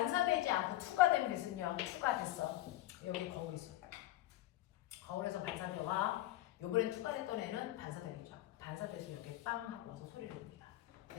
않고 투가 된 빛은요. 투가 됐어. 여기 거울 있어. 거울에서 반사되와 요번엔 투가 됐던 애는 반사되겠죠. 반사돼서 이렇게 빵 하고 와서 소리를 냅니다.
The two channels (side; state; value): right; quieter; 15.3 dB